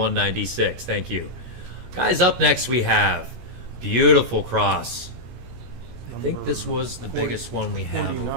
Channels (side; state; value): left; late; 16 ms